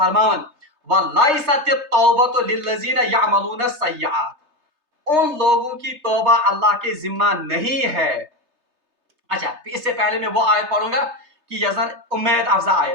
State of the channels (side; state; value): left; late; 3.3 ms